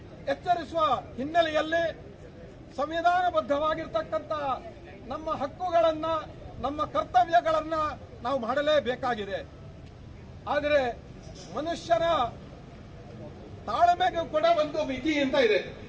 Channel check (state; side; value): identical; both; correlation 1.00